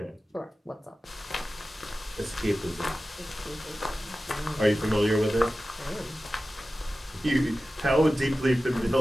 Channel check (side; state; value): both; normal; correlation 0.95